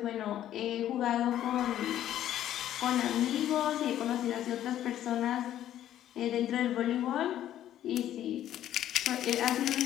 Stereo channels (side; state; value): right; quieter; 11.8 dB